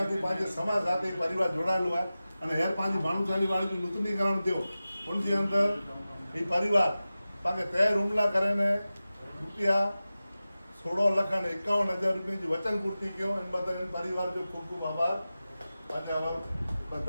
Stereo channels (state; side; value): inverted; both; correlation -0.95